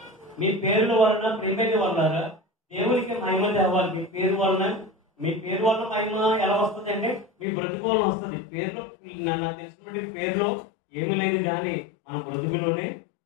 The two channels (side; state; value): right; drops out; at 7.5 s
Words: మీ పేర్ల వలన ప్రేమని వల్ల దేవునికి మహిమ తేవాలి. మీ పేరు వలన మహిమ ఎలా వస్తుంది అంటే మీ బ్రతుకు వలన వస్తుంది. పేరులో నాకు తెలిసినటువంటి పేరులో ఏమీ లేదు, కానీ మన బ్రతుకులోనే